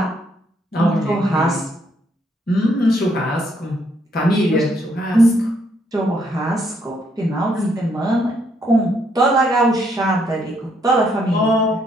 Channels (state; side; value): normal; both; correlation 0.72